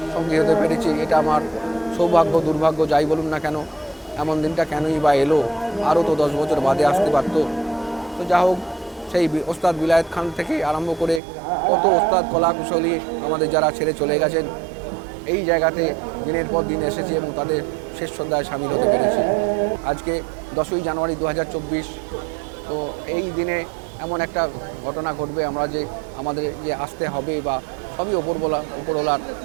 সঙ্গী হতে পেরেছি। এটা আমার সৌভাগ্য, দুর্ভাগ্য যাই বলুন না কেন। এমন দিনটা কেনই বা এলো? আরও তো 10 বছর বাদে আসতে পারত। তো যা হোক, সেই ওস্তাদ বিলায়েত খান থেকে আরম্ভ করে কত ওস্তাদ, কলাকুশলী আমাদের যারা ছেড়ে চলে গেছেন, এই জায়গাতে দিনের পর দিন এসেছি এবং তাদের শেষ শ্রদ্ধায় সামিল হতে পেরেছি। আজকে 10ই জানুয়ারি 2024। তো এই দিনে এমন একটা ঘটনা ঘটবে, আমাদের যে আসতে হবে, বা সবই ওপরওয়ালার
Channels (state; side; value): drops out; left; at 11.2 s